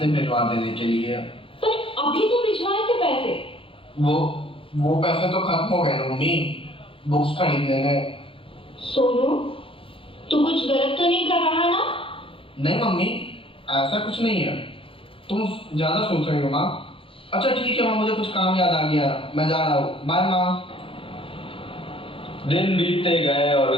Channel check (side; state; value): right; late; 0.26 ms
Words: भिजवा देने के लिए। पर अभी तो भिजवाए थे पैसे। वो पैसे तो खत्म हो गए ना मम्मी, बुक्स खरीदने में। सोनू, तू कुछ गलत तो नहीं कर रहा ना? नहीं मम्मी, ऐसा कुछ नहीं है, तुम ज्यादा सोच रही हो माँ। अच्छा ठीक है माँ, मुझे कुछ काम याद आ गया, मैं जा रहा हूँ, बाय माँ। दिन बीतते गए और